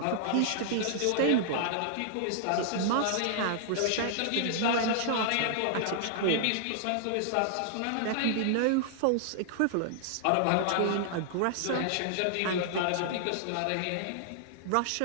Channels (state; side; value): different; both; correlation -0.01